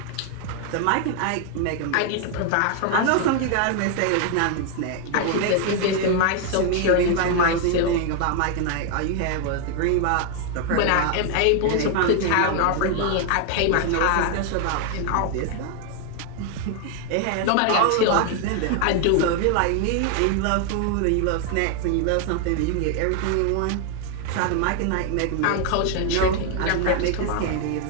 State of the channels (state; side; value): different; both; correlation 0.00